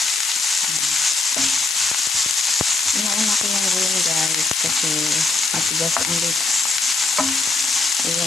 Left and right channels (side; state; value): left; noise; hiss, 2 dB below the sound